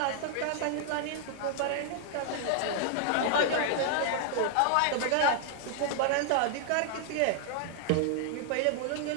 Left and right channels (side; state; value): both; different; correlation -0.01